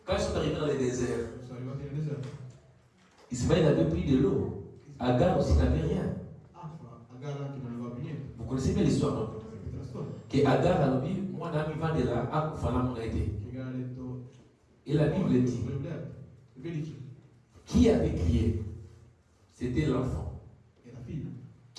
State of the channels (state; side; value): identical; both; correlation 1.00